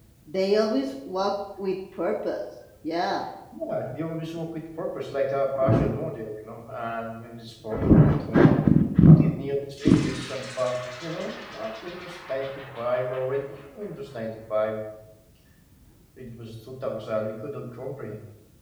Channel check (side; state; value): both; identical; correlation 1.00